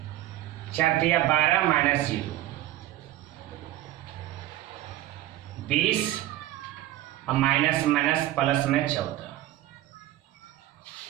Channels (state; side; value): quieter; left; 14.6 dB